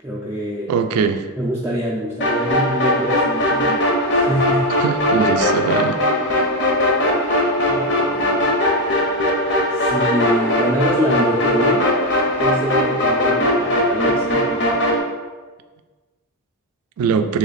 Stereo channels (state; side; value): normal; both; correlation 0.07